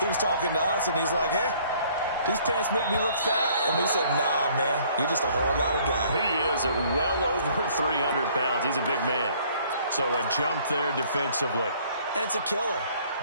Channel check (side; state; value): both; inverted; correlation -0.59